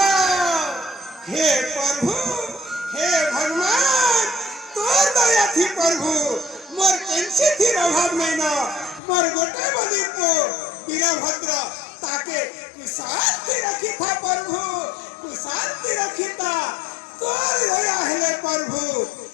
हे प्रभु हे भगवान तोर दया थी प्रभु मोर कैसे थी अभाव नहीं ना मोर गोटे बली को वीरभद्र ताके कुशांति रखी था प्रभु कुशांति रखी था तोर दया हेले प्रभु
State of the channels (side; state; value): right; drops out; at 9.0 s